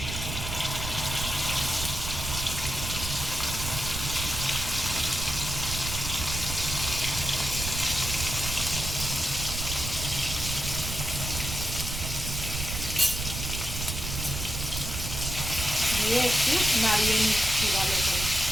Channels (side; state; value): right; noise; rumble, 5 dB below the sound